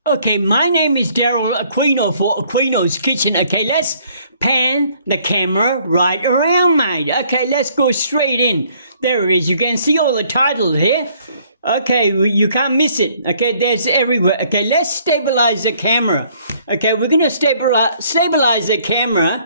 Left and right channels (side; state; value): both; inverted; correlation -0.63